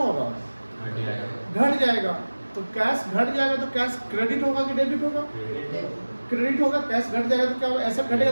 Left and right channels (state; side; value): inverted; both; correlation -1.00